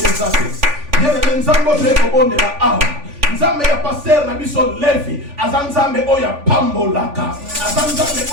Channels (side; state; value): left; late; 3.5 ms